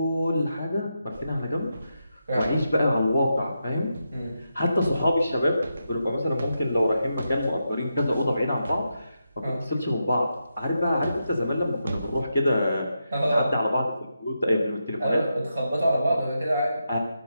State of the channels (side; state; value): both; inverted; correlation -0.86